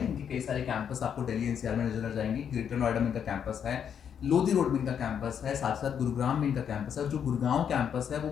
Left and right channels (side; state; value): right; quieter; 8.1 dB